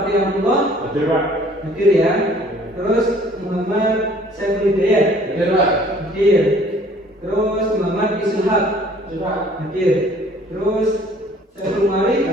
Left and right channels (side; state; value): both; normal; correlation 0.55